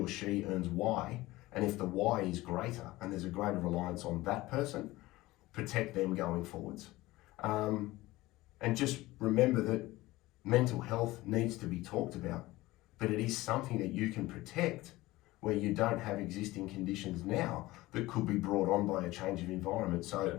she earns Y. And if the Y is greater and there's a greater reliance on that person, protect them going forwards. And just remember that mental health needs to be talked about, but it is something that you can protect where you don't have existing conditions now that could be brought on by a change of environment.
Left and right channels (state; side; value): quieter; right; 18.8 dB